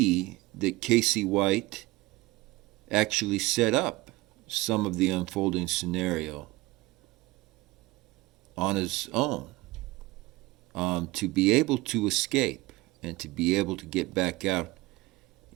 that Casey White actually set up some of the unfolding scenario on his own to be able to escape and to be able to get back out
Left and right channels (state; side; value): quieter; left; 20.4 dB